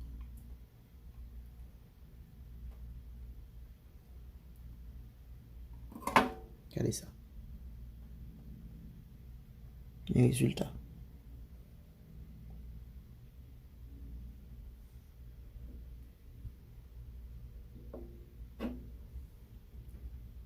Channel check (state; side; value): identical; both; correlation 1.00